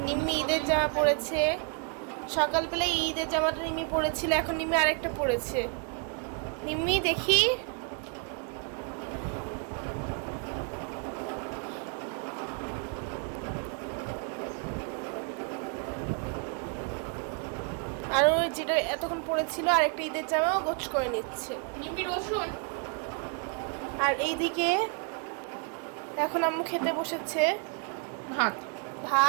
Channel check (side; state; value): left; quieter; 38.8 dB